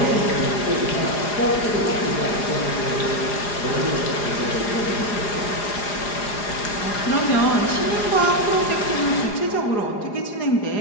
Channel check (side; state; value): right; late; 4.9 ms